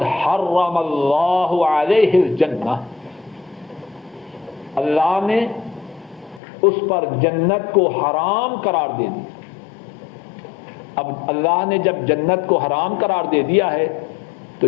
حرم اللہ علیہ الجنہ، اللہ نے اس پر جنت کو حرام قرار دے دی. اب اللہ نے جب جنت کو حرام قرار دے دیا ہے تو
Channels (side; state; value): right; drops out; at 6.4 s